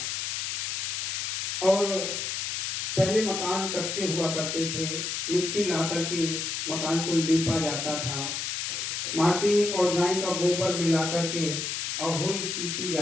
और पहले मकान कच्चे हुआ करते थे, मिट्टी ला करके मकान को लीपा जाता था, माटी और गाय का गोबर मिला करके अहोई चीती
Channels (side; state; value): left; noise; hiss, 2 dB below the sound